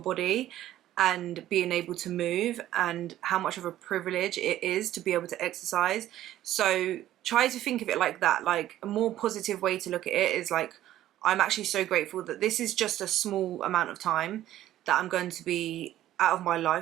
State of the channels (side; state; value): left; quieter; 13.3 dB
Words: body and being able to move, and how much of a privilege it is to be able to exercise. So try to think of it like that. Like a more positive way to look at it is like, I'm actually so grateful that this is just a small amount of time that I'm going to be out of my